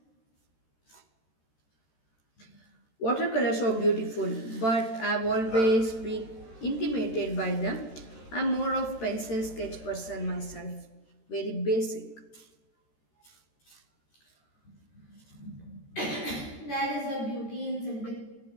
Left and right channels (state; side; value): late; right; 13 ms